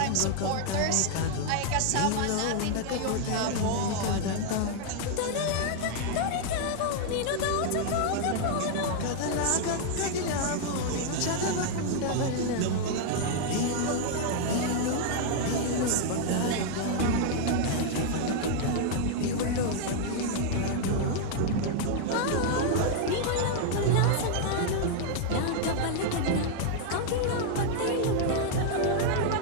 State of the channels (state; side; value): different; both; correlation 0.00